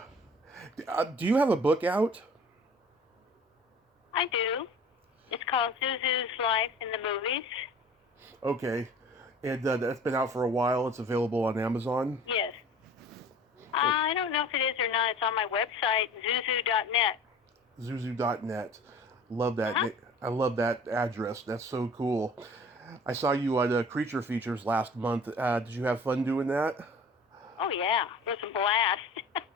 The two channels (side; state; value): both; normal; correlation 0.44